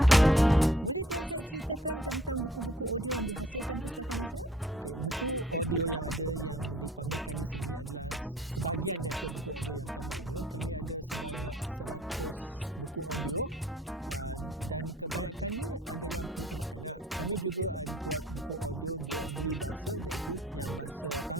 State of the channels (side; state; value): both; normal; correlation 0.57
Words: Boleh Tuan Syed ceritakan tentang buku-buku audio yang dihasilkan Pustaka Nasional? Okey, buku audio yang ada yang dipamerkan di sini adalah sebahagian daripada buku audio yang kami ada. Kami ada sebanyak 100 buku audio. Dan kebanyakannya adalah buku kanak-kanak. Kami juga buat buku audio yang dua bahasa, iaitu yang bahasa